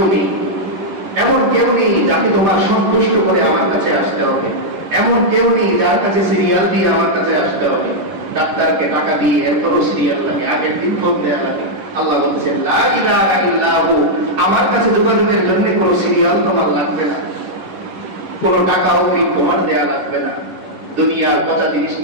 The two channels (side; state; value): left; late; 11 ms